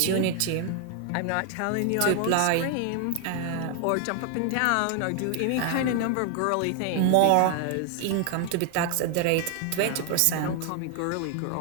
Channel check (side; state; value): both; different; correlation 0.00